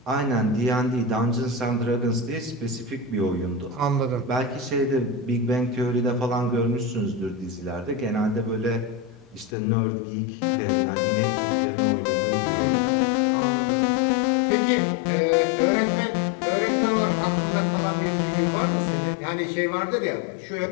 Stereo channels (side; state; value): right; drops out; at 9.5 s